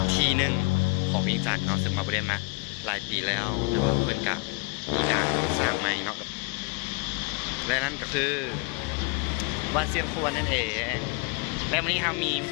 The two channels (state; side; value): quieter; right; 27.8 dB